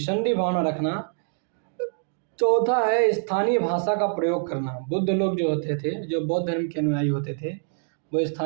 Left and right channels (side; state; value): left; silent; 61 dB below the other